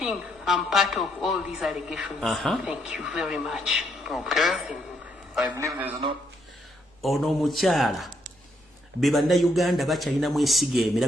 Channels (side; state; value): both; normal; correlation 0.73